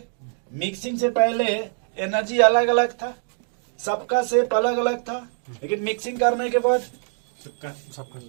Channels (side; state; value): left; silent; 63 dB below the other